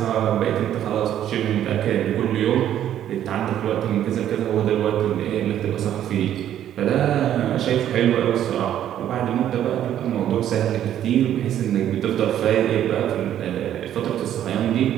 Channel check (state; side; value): quieter; left; 11.0 dB